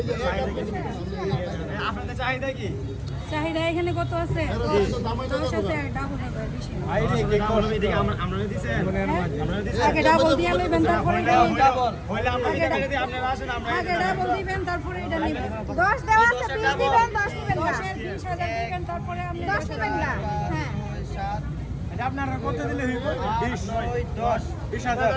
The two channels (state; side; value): identical; both; correlation 1.00